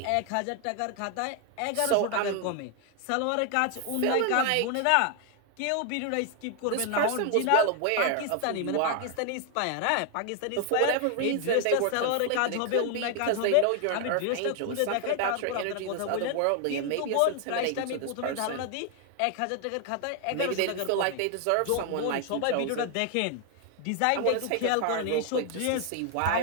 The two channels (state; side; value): different; both; correlation 0.00